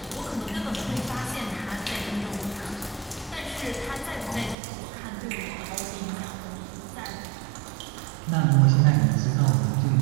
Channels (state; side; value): drops out; left; at 4.5 s